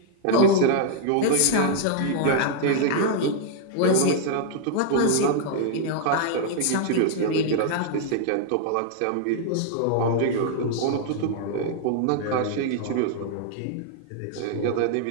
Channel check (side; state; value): both; different; correlation -0.01